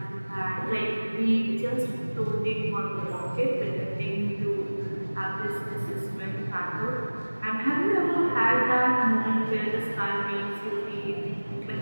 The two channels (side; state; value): both; inverted; correlation -1.00